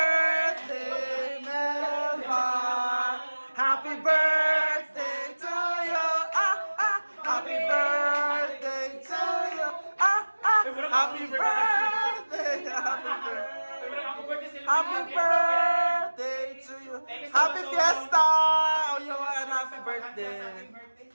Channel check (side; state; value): both; inverted; correlation -1.00